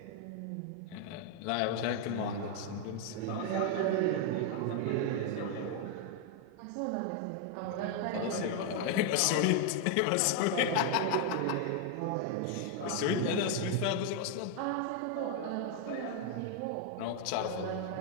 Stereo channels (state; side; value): different; both; correlation 0.00